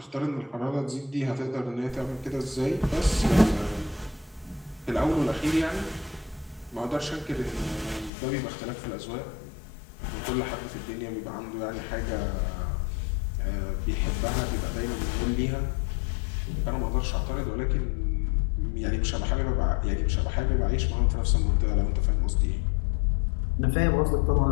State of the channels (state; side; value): drops out; right; at 8.1 s